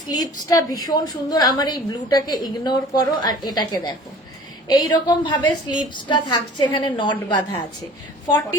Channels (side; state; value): both; normal; correlation 0.46